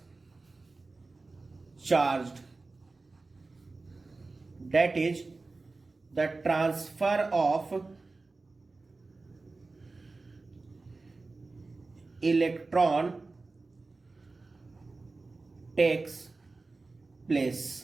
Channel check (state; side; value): quieter; left; 3.6 dB